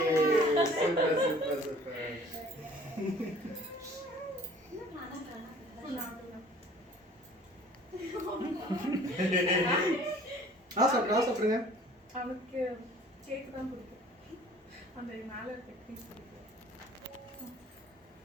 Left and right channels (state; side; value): normal; both; correlation 0.51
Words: Super. சாப்பிடுங்க. அவனுக்கு cake தான் பிடிக்கும். அந்த மேல இருக்க க்ரீம் பிடிக்கும்.